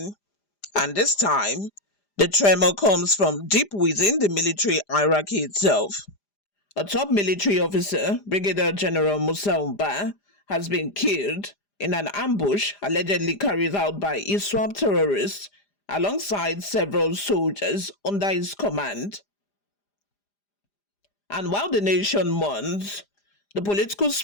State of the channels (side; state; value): right; late; 4.9 ms